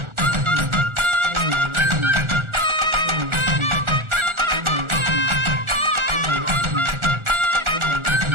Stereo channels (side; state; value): left; late; 1.4 ms